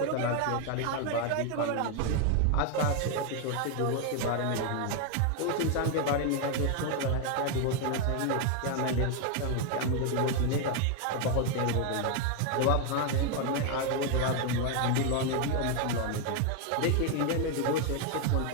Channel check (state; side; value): different; both; correlation 0.01